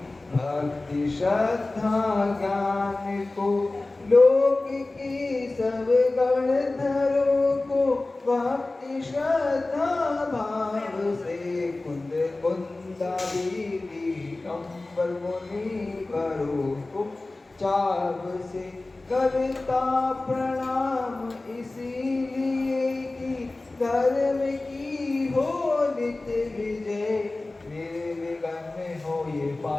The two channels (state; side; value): quieter; right; 3.1 dB